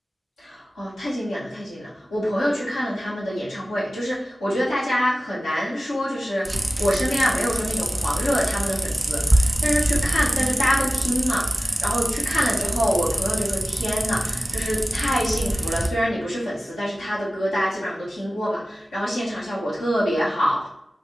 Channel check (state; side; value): normal; both; correlation 0.96